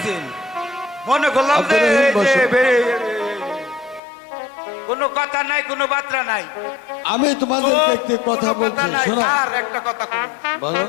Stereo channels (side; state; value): right; drops out; at 4.0 s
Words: মনে করলাম যে আব্দুর রহিম বসো। কোনো কথা নাই, কোনো বার্তা নাই। আমি তোমাদেরকে একটি কথা কোনো বলছি, নাই। শোনো। আর একটা কথা বলুন। বলো।